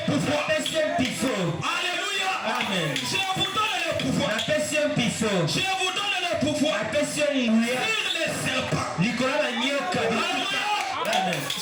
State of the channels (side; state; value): both; identical; correlation 1.00